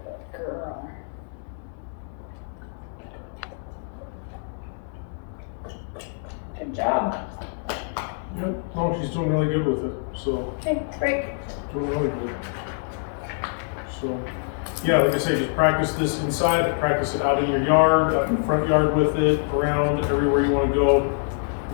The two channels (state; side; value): silent; right; 62 dB below the other